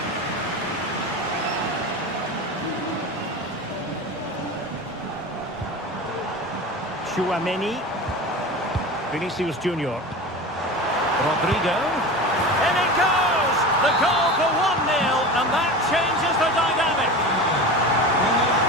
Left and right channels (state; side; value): normal; both; correlation 0.30